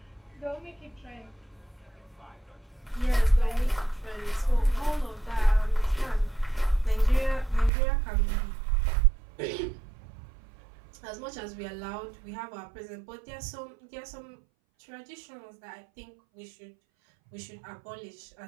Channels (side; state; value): left; drops out; at 7.7 s